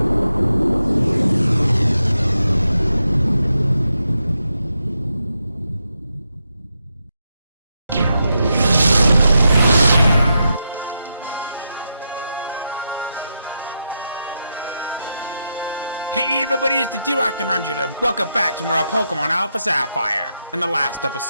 Hey everybody, it's the D-Rock and Ranger, and welcome back to more Pokemon Alpha Sapphire. In the last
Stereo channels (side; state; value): both; inverted; correlation -0.85